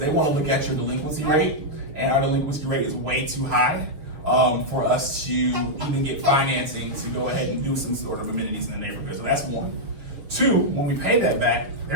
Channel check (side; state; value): left; late; 6.9 ms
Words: want to look at your delinquency rate, and our delinquency rate is way too high for us to even get financing to go ahead and do some sort of amenities in the neighborhood. So that's one. Two, when we pay that back,